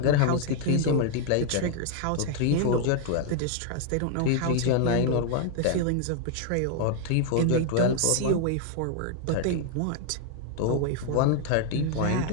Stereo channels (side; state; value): both; different; correlation 0.00